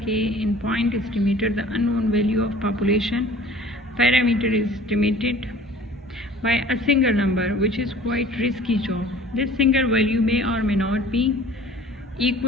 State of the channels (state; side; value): normal; both; correlation 0.47